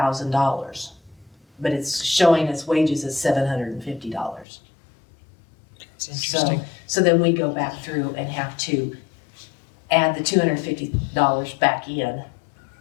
but it's showing us wages as $750. It's interesting. So then we go back through and have to add the $250 back in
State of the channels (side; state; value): right; drops out; at 4.5 s